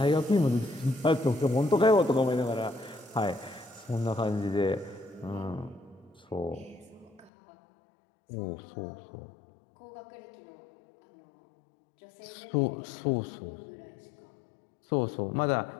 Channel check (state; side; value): drops out; right; at 7.3 s